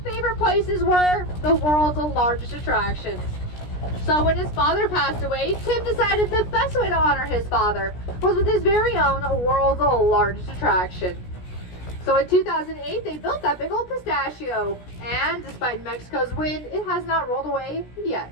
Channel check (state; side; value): late; right; 17 ms